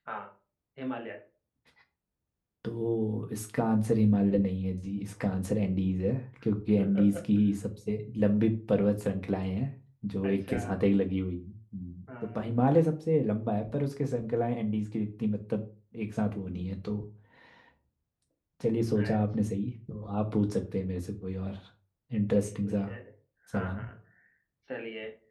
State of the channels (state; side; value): identical; both; correlation 1.00